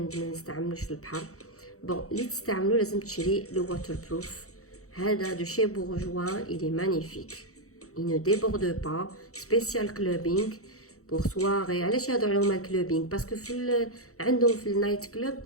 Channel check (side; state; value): right; late; 0.64 ms